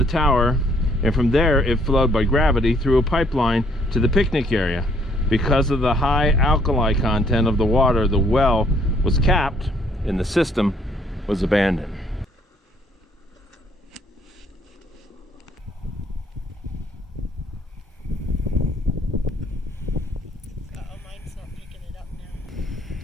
tower, and from there it flowed by gravity through a pipeline to the picnic area. Because of the high alkali content of the water, the well was capped and the system was abandoned.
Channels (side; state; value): both; normal; correlation 0.65